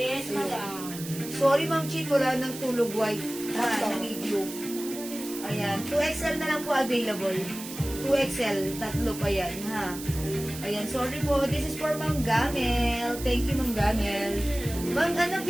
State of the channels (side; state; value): right; noise; hiss, 11 dB below the sound